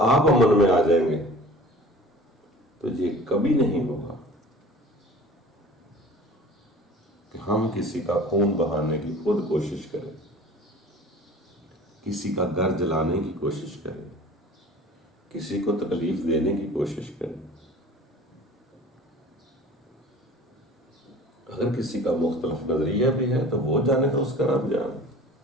आप अमन में आ जाएंगे तो ये कभी नहीं होगा कि हम किसी का खून बहाने की खुद कोशिश करें, किसी का घर जलाने की कोशिश करें, किसी को तकलीफ देने की कोशिश करें। अगर किसी का मुख्तलिफ नजरिया भी है तो वो जाने तो उसका रब जाने।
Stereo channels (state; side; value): normal; both; correlation 0.43